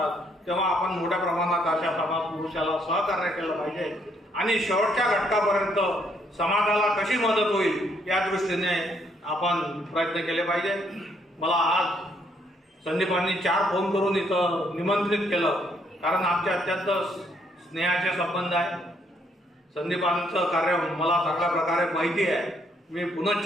तेव्हा आपण मोठ्या प्रमाणात अशा समाज पुरुषाला सहकार्य केलं पाहिजे आणि शेवटच्या घटकापर्यंत समाजाला कशी मदत होईल या दृष्टीने आपण प्रयत्न केले पाहिजे. मला आज संदीपांनी 4 फोन करून इथं निमंत्रित केलं, कारण आमचे अत्यंत स्नेहाचे संबंध आहे. संदीपांचं कार्य मला चांगल्या प्रकारे माहिती आहे. मी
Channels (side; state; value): both; normal; correlation 0.70